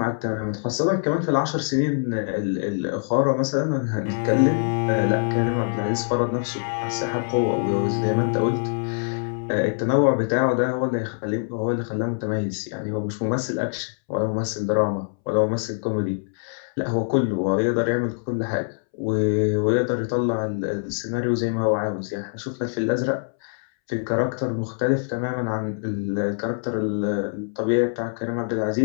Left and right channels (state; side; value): silent; right; 63 dB below the other